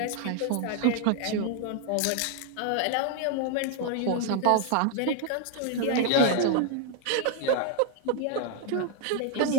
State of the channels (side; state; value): both; different; correlation 0.00